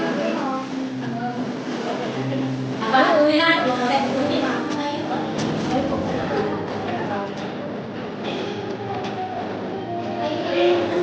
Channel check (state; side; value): identical; both; correlation 1.00